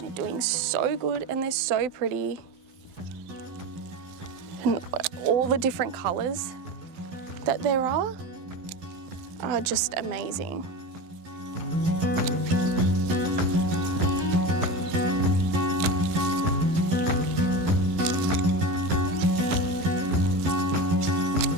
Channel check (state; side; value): late; left; 12 ms